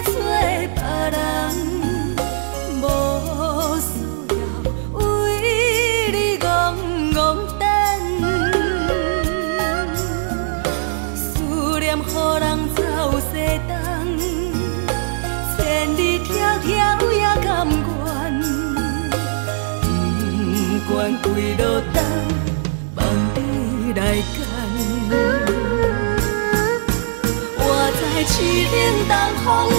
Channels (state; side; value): silent; left; 59 dB below the other